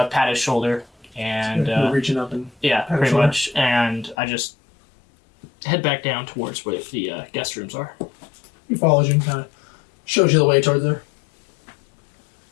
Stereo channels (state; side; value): drops out; right; at 4.2 s